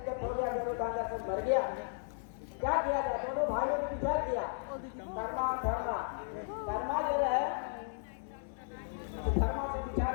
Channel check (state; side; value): silent; right; 54 dB below the other